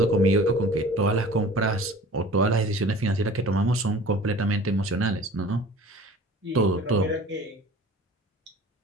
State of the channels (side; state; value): both; normal; correlation 0.43